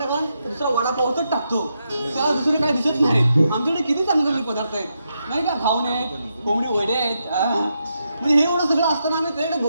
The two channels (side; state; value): both; inverted; correlation -0.83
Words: दुसरा वडापावच टाकतो त्याला दुसरे काय दिसत नाही आमच्याकडे किती चांगले पदार्थ आहेत नाही का घावणे आहेत कोंबडी वडे आहेत म्हणजे हे एवढं सगळं असताना आम्ही त्याकडे